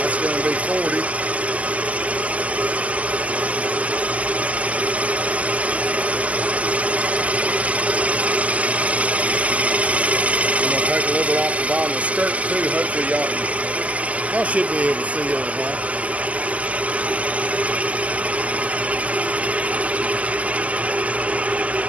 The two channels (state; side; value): late; left; 0.070 ms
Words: Going to be 40. I'm going to take a little bit off the bottom of the skirt too. Hopefully y'all should be able to see everything.